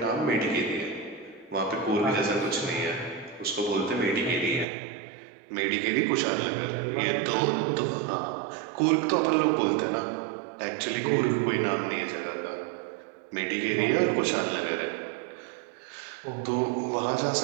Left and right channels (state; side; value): drops out; left; at 4.7 s